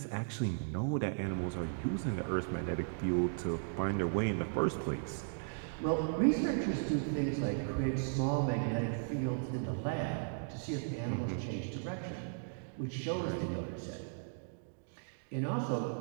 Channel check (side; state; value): left; silent; digital silence